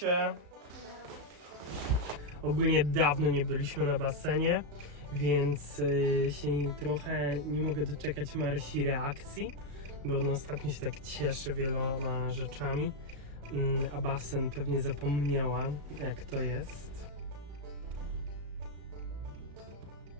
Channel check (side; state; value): left; late; 35 ms